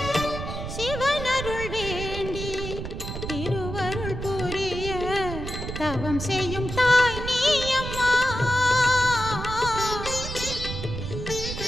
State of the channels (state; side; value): noise; right; rumble, 6 dB below the sound